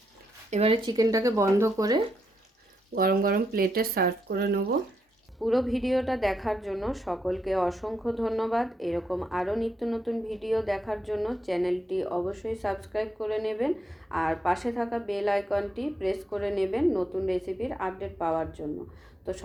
এবারে চিকেনটাকে বন্ধ করে গরম গরম প্লেটে সার্ভ করে নেব। পুরো ভিডিওটা দেখার জন্য সকলকে অসংখ্য ধন্যবাদ। এরকম আরও নিত্য নতুন ভিডিও দেখার জন্য চ্যানেলটি অবশ্যই সাবস্ক্রাইব করে নেবেন আর পাশে থাকা বেল আইকনটি প্রেস করে নেবেন নতুন রেসিপির আপডেট পাওয়ার জন্য। তো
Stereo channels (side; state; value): both; normal; correlation 0.80